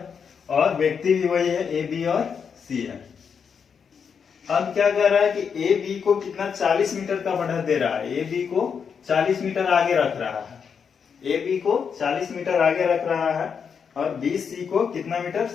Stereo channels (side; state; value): right; quieter; 6.6 dB